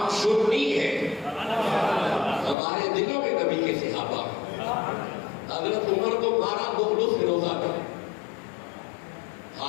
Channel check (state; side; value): drops out; right; at 2.6 s